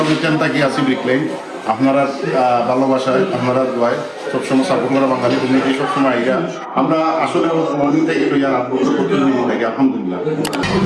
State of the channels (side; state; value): both; identical; correlation 1.00